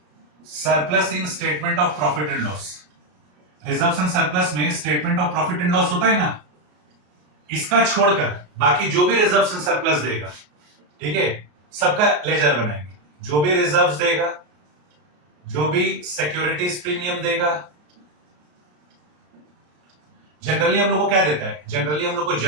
surplus in statement of profit and loss. Reserves and surplus में statement of profit and loss होता है ना, इसका छोड़कर बाकी जो भी रिजर्व्स एंड सरप्लस देगा, ठीक है, सबका लेजर बनाएंगे। जो भी रिजर्व्स देगा, जो भी सिक्योरिटीज प्रीमियम देगा, जनरली हम लोग को क्या देता है, जनरली हम लोग को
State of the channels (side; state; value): left; late; 33 ms